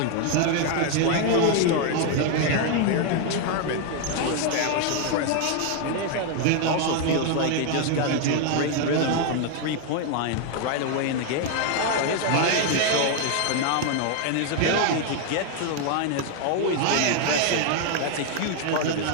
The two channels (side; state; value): both; different; correlation 0.01